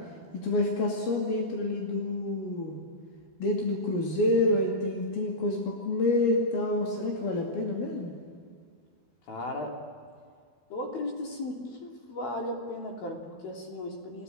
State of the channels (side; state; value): right; late; 12 ms